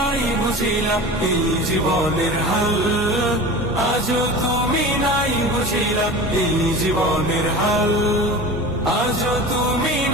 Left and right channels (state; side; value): normal; both; correlation 0.33